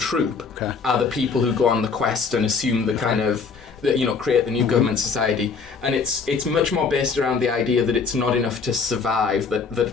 Are the people who go on the quest and assume the kind of. Create the new government society, and it's much more based around the idea that it's not enough to survive,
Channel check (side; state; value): right; quieter; 5.1 dB